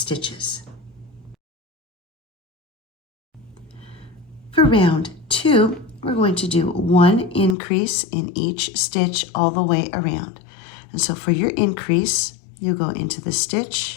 For round 2, we're going to do 1 increase in each stitch all the way around. And so for your increase, you go into the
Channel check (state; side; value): drops out; right; at 7.6 s